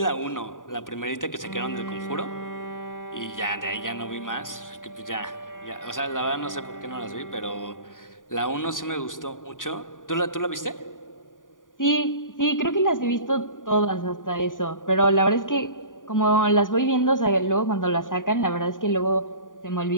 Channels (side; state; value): right; late; 0.88 ms